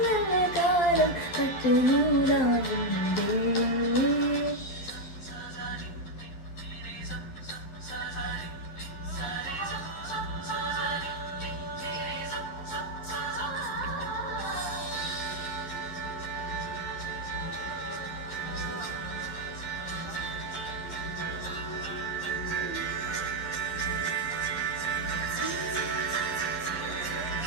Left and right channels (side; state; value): right; late; 11 ms